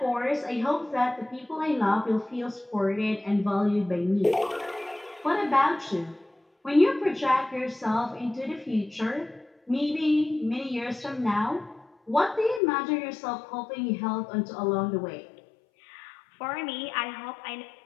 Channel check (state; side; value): drops out; right; at 12.6 s